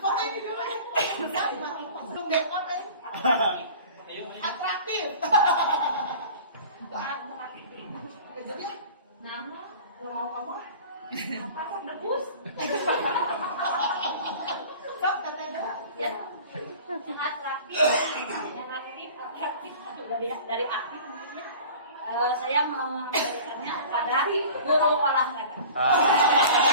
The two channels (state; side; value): inverted; both; correlation -0.42